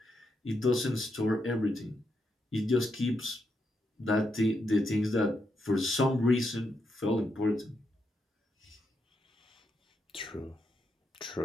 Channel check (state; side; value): normal; both; correlation 0.82